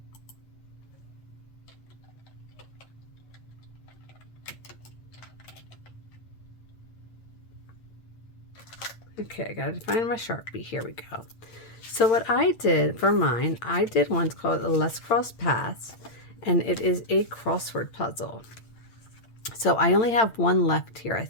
Okay, I gotta find my Sharpie. Here we go. So what I did for mine, I did one called Let's Cross Paths, and it is a crossword puzzle. So I only have one left here, I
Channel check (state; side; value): late; right; 8.8 ms